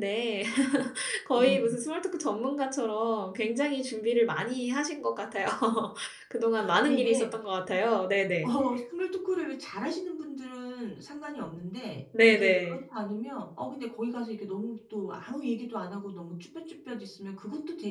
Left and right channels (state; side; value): identical; both; correlation 1.00